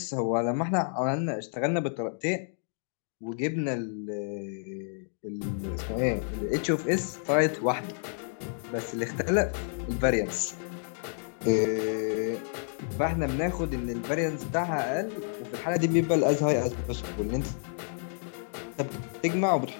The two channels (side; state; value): right; silent; digital silence